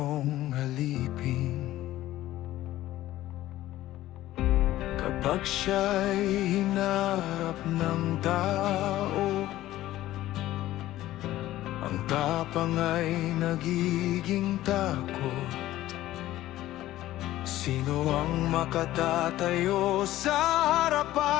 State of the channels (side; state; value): right; quieter; 15.0 dB